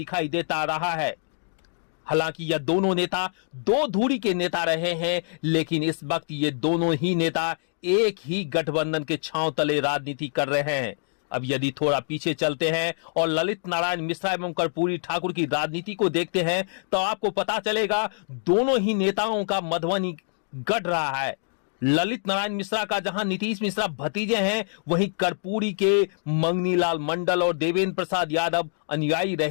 देता रहा है। हालांकि यह दोनों नेता दो धुरी के नेता रहे हैं, लेकिन इस वक्त ये दोनों ही नेता एक ही गठबंधन के छांव तले राजनीति कर रहे हैं। अब यदि थोड़ा पीछे चलते हैं और ललित नारायण मिश्रा एवं कर्पूरी ठाकुर की राजनीति को देखते हैं, तो आपको पता चलेगा दोनों ही नेताओं का मधुबनी गढ़ रहा है। ललित नारायण मिश्रा का जहां नीतीश मिश्रा भतीजे हैं, वहीं कर्पूरी के मंगनीलाल मंडल और देवेंद्र प्रसाद यादव अनुयायी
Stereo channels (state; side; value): silent; right; digital silence